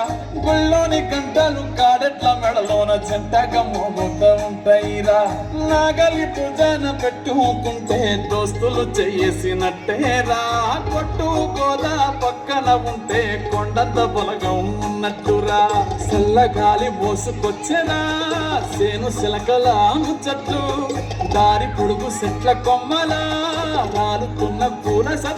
గుళ్ళోని గంటలు కాడెట్ల మెడలోన జంటగా మోగుతూ ఉంటాయిరా నాగలి పూజన పెట్టుకుంటే దోస్తులు చేసినట్టేరా కొట్టు గోదా పక్కన ఉంటే కొండంత బలగం ఉన్నట్టురా చల్లగాలి మోసుకొచ్చెనా సేను సిలకల ముచ్చట్టు దారి పొడుగు చెట్ల కొమ్మలా రాలుతున్న పూల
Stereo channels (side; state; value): both; identical; correlation 1.00